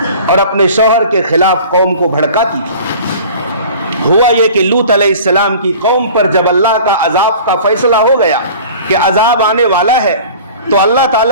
اور اپنے شوہر کے خلاف قوم کو بھڑکاتی تھی۔ ہوا یہ کہ لوط علیہ السلام کی قوم پر جب اللہ کا عذاب کا فیصلہ ہو گیا کہ عذاب آنے والا ہے، تو اللہ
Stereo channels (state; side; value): inverted; both; correlation -0.43